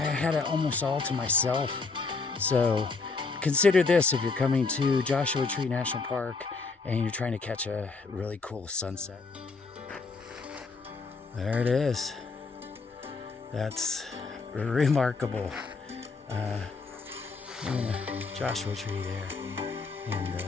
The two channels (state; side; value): quieter; right; 4.3 dB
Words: it almost all to myself. So consider this if you're coming to Joshua Tree National Park and you're trying to catch a really cool sunset. There it is. That's remarkable. Joshua Tree there and